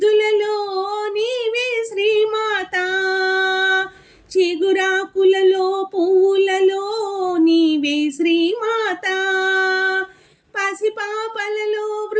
నీవే శ్రీమాత. చిగురాకులలో పూలలో నీవే శ్రీమాత, పసిపాపలలో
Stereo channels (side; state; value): both; identical; correlation 1.00